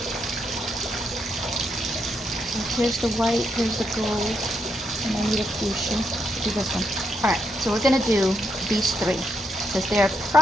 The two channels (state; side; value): normal; both; correlation 0.80